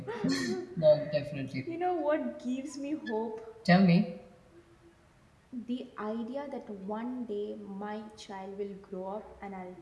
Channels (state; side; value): identical; both; correlation 1.00